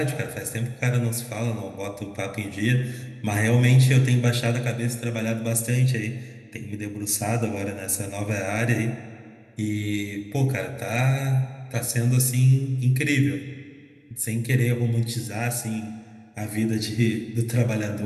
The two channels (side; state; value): both; identical; correlation 1.00